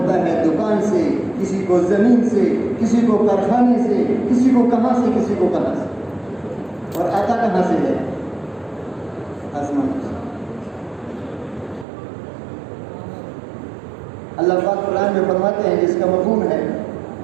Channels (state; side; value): drops out; left; at 11.9 s